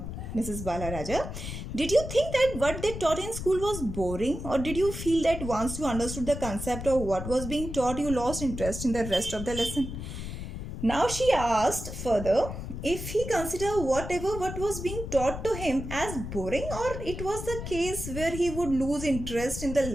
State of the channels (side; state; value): left; noise; rumble, 7 dB below the sound